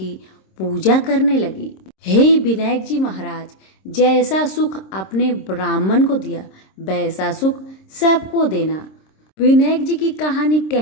पूजा करने लगी। हे विनायक जी महाराज, जैसा सुख अपने ब्राह्मण को दिया वैसा सुख सबको देना। विनायक जी की कहानी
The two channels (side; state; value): right; late; 26 ms